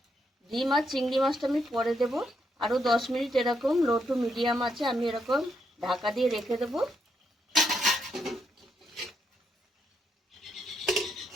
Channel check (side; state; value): both; normal; correlation 0.78